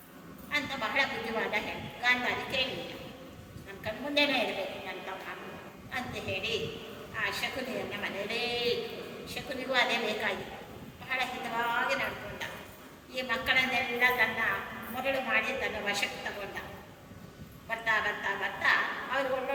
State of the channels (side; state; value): both; identical; correlation 1.00